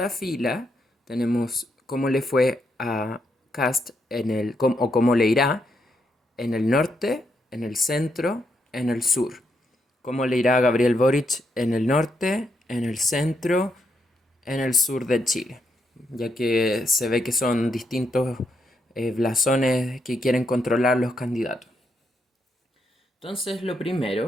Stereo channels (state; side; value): normal; both; correlation 0.79